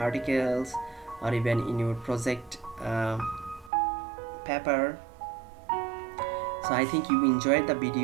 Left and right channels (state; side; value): drops out; left; at 3.7 s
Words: or even in your project paper. So I think you enjoyed the